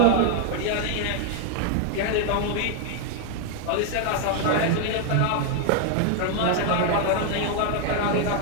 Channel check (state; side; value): different; both; correlation 0.00